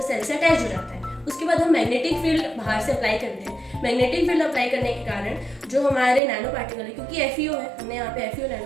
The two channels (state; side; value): drops out; left; at 6.2 s